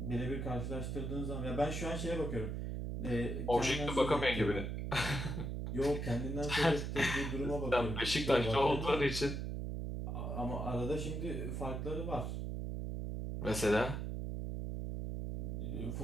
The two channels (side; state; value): right; noise; hum, 3 dB below the sound